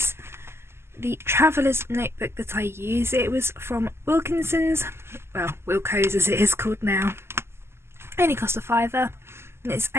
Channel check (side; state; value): left; late; 0.12 ms